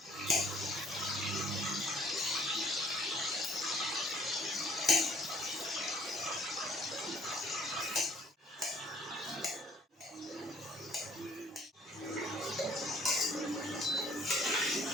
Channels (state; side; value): normal; both; correlation 0.59